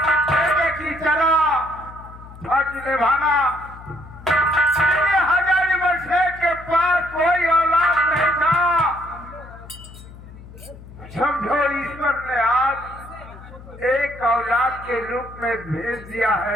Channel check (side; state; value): left; noise; hum, 17 dB below the sound